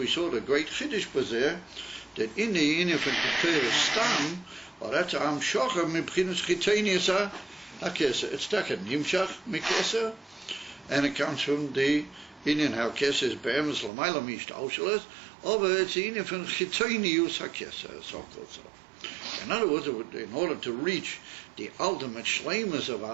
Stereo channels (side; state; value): left; drops out; at 13.9 s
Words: saw the great chiddush bazeh that in the inif and Keter stam, or that's am shocher mibchinas chitenius ha-keser. It's taken nimshach mikeser, and it comes from the inyan ha-keser is be'emes l'mayla mishtaushales, over it's the inif and chitenius ha-keser, so-called so. In other words, in order to reach the ultimate shleimus of